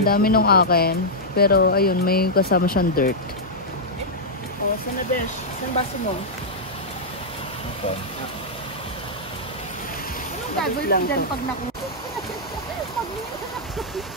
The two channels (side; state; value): both; normal; correlation -0.08